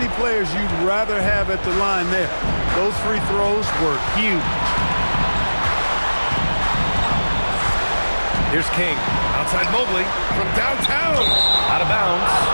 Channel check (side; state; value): both; inverted; correlation -1.00